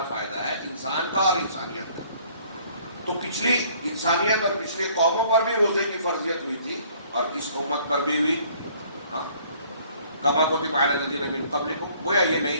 فائدہ ہے، انسان کا اور انسانیت کا. تو پچھلی انسانیت اور پچھلی قوموں پر بھی روزے کی فرضیت ہوئی تھی اور اس امت پر بھی ہوئی. ہاں، کما کتب علی الذین من قبلکم، گویا یہ نئی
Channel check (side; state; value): both; inverted; correlation -0.59